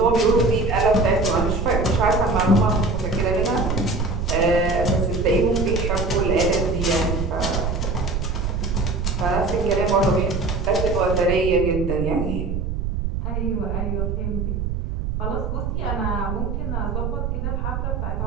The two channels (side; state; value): right; noise; rumble, 2 dB below the sound